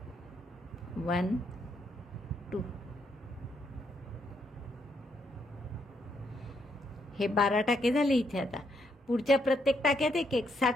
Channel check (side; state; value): both; normal; correlation 0.76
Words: 1, 2. हे 12 टाके झाले इथे. आता पुढच्या प्रत्येक टाक्यात 1-1,